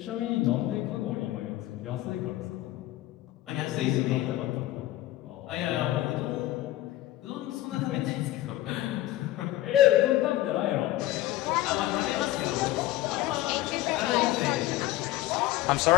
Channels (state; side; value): quieter; right; 15.5 dB